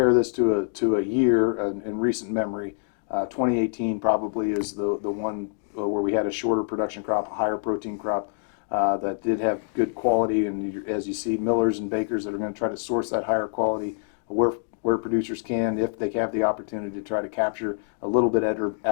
this to a year in recent memory, 2018 probably is the one where we had a shorter production crop, a higher protein crop that did have good quality. And as you see, millers and bakers that are going to try to source that higher quality where producers can, if they have the opportunity to try to capture a little bit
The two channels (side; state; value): right; silent; digital silence